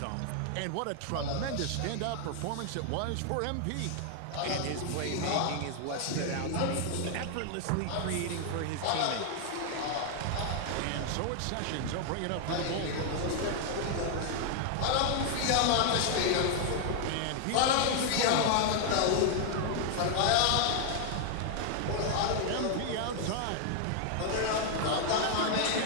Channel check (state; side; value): different; both; correlation 0.00